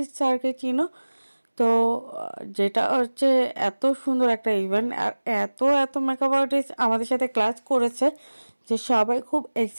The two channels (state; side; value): inverted; both; correlation -1.00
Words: স্যারকে চিনো। তো যেটা হচ্ছে এত সুন্দর একটা ইভেন্ট, আর এত এত মেকআপ আর্টিস্ট আমাদের সাথে ক্লাস করেছে যে সবাই খুব